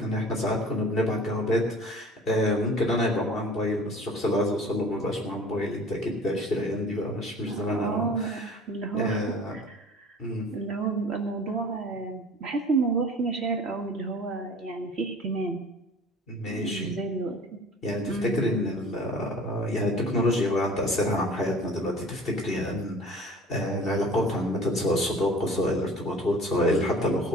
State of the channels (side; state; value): both; normal; correlation 0.45